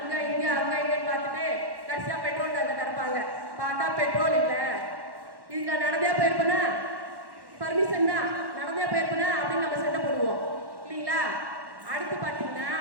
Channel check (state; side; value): late; left; 1.1 ms